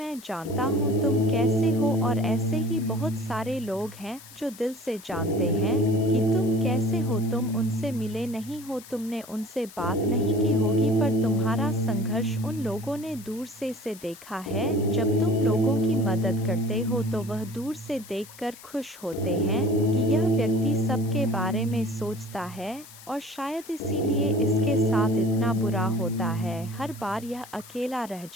जानता हूँ तुम कैसे हो। और ऐसे ही बहुत सारे लोग हैं जो दिल से जानते हैं कि तुम कैसे हो। तुम उनसे मिले नहीं हो, तुमने उनसे बात नहीं की होगी, पर तुम्हारा संघर्ष उन लोगों ने दूर से देखा है। जब तुम लोगों की मदद करते हो तो वह दूर से देखकर खुश होते हैं कि यह व्यक्ति सबके बारे में सोचता है, और शायद इसीलिए इसके साथ इतना बुरा होता है। हर बार यह अकेला रह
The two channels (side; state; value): left; noise; hiss, 19 dB below the sound